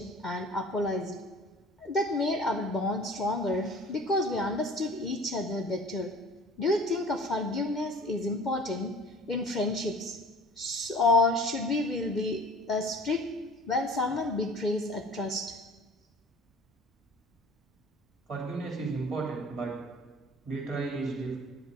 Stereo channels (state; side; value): normal; both; correlation 0.46